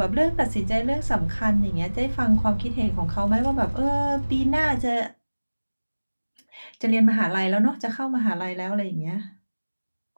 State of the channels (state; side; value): inverted; both; correlation -1.00